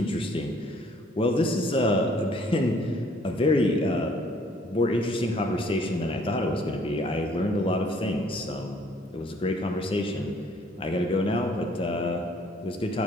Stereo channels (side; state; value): both; normal; correlation 0.60